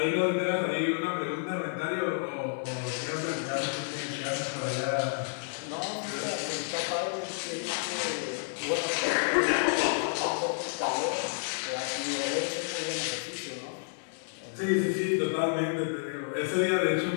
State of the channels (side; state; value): right; silent; digital silence